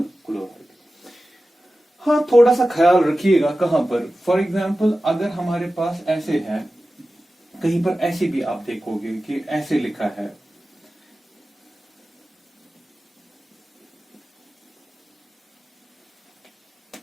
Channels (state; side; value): normal; both; correlation 0.94